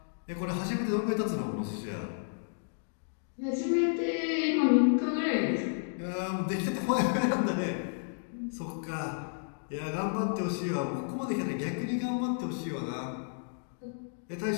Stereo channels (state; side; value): silent; right; digital silence